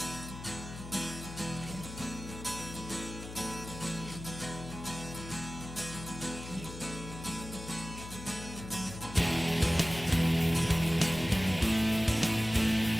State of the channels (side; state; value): left; noise; hum, 11 dB below the sound